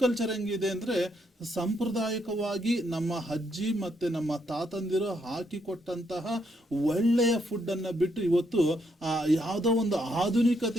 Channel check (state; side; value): normal; both; correlation 0.76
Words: ಕಲ್ಚರ್ ಹೆಂಗಿದೆ ಅಂದ್ರೆ, ಸಾಂಪ್ರದಾಯಿಕವಾಗಿ ನಮ್ಮ ಅಜ್ಜಿ ಮತ್ತೆ ನಮ್ಮ ತಾತಂದಿರು ಹಾಕಿಕೊಟ್ಟಂತಹ ಒಳ್ಳೆಯ ಫುಡ್ ಅನ್ನ ಬಿಟ್ಟು ಇವತ್ತು ಯಾವುದೋ ಒಂದು